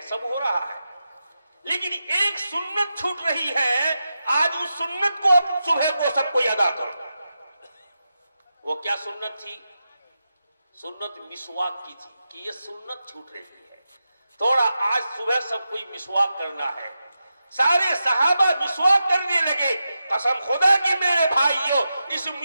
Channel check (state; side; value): inverted; both; correlation -0.89